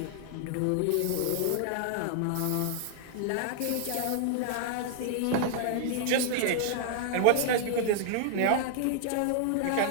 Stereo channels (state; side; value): different; both; correlation -0.01